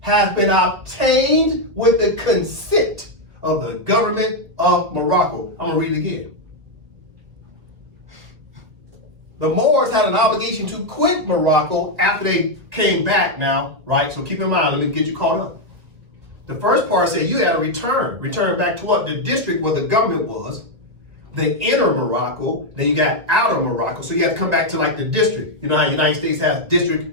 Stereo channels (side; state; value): left; late; 1.7 ms